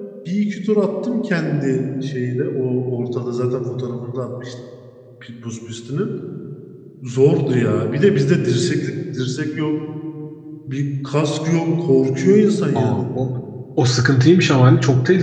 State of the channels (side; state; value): both; identical; correlation 1.00